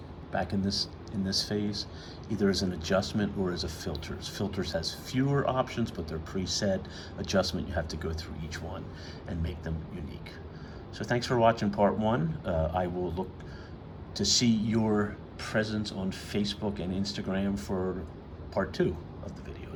back in this phase, either as an adjustment or as a filters. Filters has fewer options, but they're preset. Adjustment, you have to go through each one and make them unique. So thanks for watching part one. I will look to see your presence on Facebook and Instagram for part two of the video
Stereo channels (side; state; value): both; identical; correlation 1.00